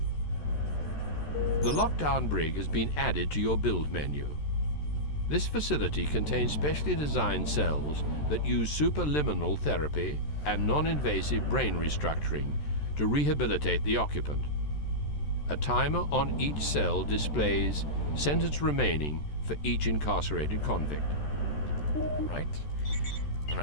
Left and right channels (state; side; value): late; right; 14 ms